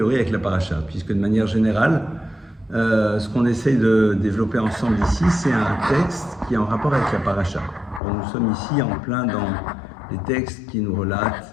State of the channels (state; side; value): drops out; right; at 8.0 s